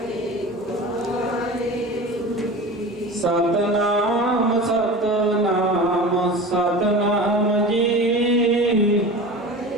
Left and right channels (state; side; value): normal; both; correlation 0.33